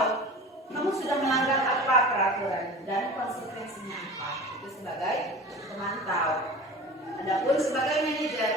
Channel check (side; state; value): both; normal; correlation 0.36